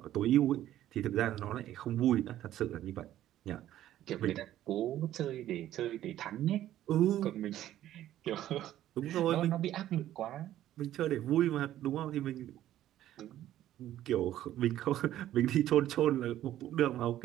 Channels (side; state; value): left; quieter; 12.8 dB